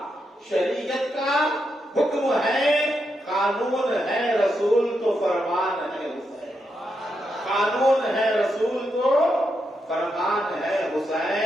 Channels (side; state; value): both; normal; correlation 0.83